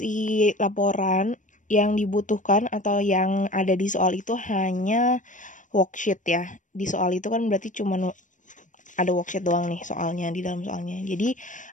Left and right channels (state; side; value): late; right; 0.37 ms